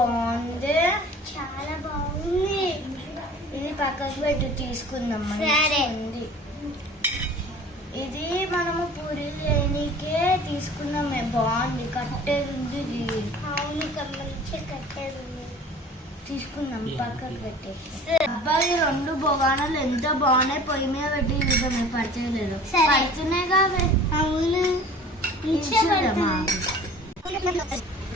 చాలా బాగుంది. ఇది పక్కకు పెట్టు, తీసుకుందాం. ఉంది ఇది మనము పూరీలు చేయడానికే తీసుకున్నామే, బాగుంది. కట్టేది ఉంది ఇది. అవును మంచిగా కట్టేది ఉంది, తీసుకుందాం. పక్కకు పెట్టేసి. అబ్బాయి 2 బొగానాలు ఎంత బాగున్నాయి, పొయ్యి మీద పెట్టి చూద్దాం. పడిచేయలేదు, పడుతున్నాయి కావే. అవును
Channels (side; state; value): both; normal; correlation 0.45